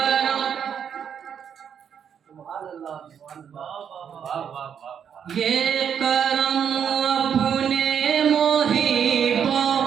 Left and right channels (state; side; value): quieter; left; 8.0 dB